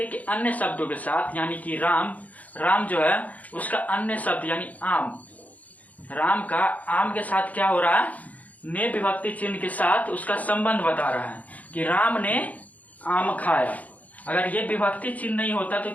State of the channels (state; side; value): late; right; 0.074 ms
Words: के अन्य शब्दों के साथ, यानी कि राम जो है उसका अन्य शब्द यानी आम, राम का आम के साथ क्या हो रहा है, ने विभक्ति चिन्ह के साथ उसका संबंध बता रहा है कि राम ने आम खाया। अगर ये विभक्ति चिन्ह नहीं होता तो